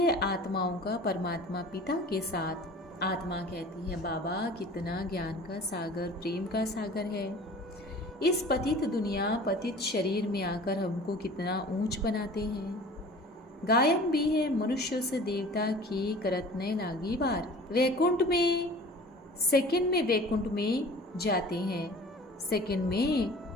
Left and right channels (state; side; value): normal; both; correlation 0.43